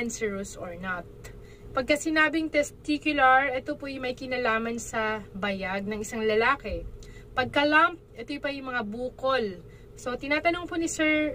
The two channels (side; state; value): both; identical; correlation 1.00